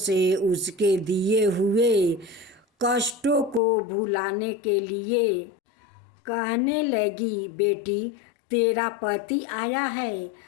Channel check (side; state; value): right; drops out; at 3.6 s